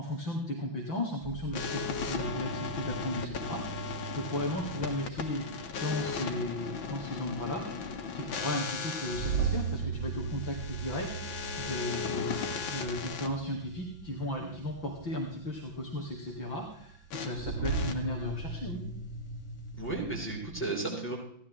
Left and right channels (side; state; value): right; late; 5.9 ms